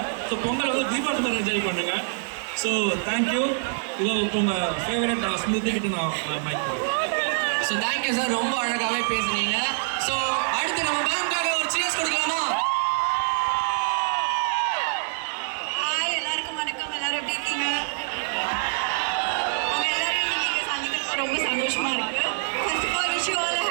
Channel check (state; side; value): silent; left; 62 dB below the other